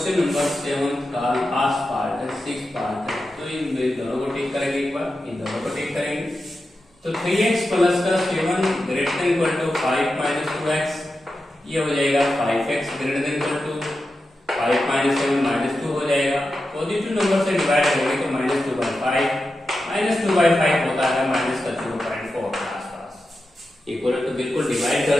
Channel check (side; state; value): both; normal; correlation 0.91